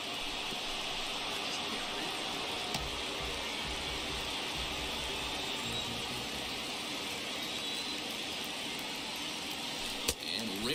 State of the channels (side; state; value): both; identical; correlation 1.00